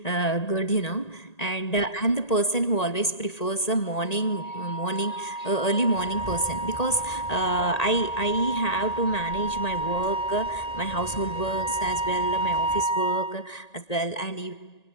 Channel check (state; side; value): late; right; 1.8 ms